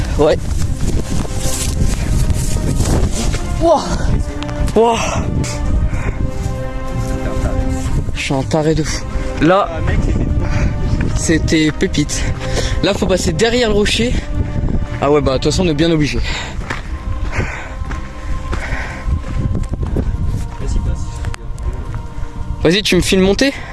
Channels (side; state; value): both; identical; correlation 1.00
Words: Ouais. Wouah. Wouah. Je suis un taré de fou. Là, Ah, mec, c'était pépite. Là, faut passer derrière le rocher. Ah ouais, bah de toute façon, on est bien obligé. Vas-y, passe. Vas-y, tu me filmes monter?